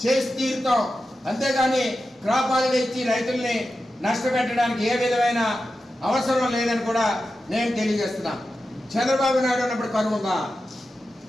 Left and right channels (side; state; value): both; normal; correlation 0.92